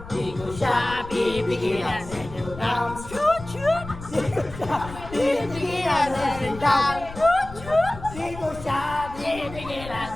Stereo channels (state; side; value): noise; left; rumble, 14 dB below the sound